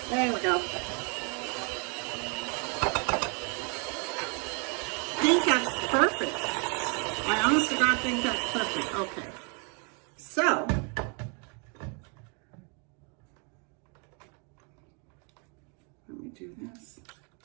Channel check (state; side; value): quieter; left; 36.1 dB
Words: There we go. I think that's perfect. I honest to God think that's perfect. Okay. So, let me do this.